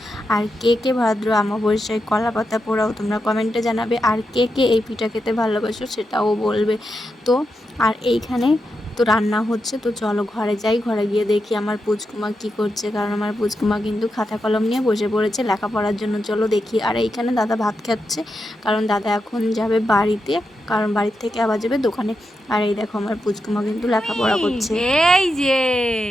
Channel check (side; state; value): both; normal; correlation 0.87